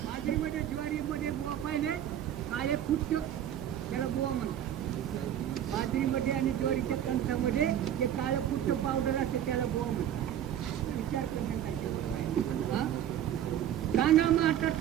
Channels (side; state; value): left; quieter; 10.6 dB